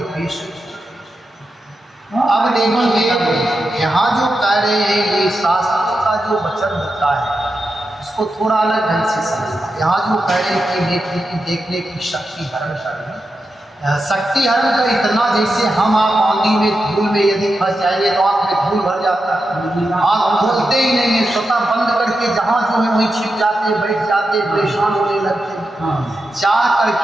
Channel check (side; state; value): both; normal; correlation 0.88